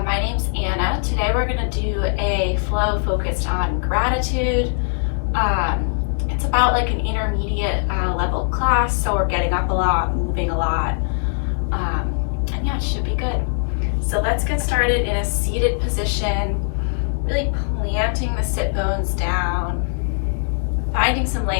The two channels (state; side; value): silent; right; digital silence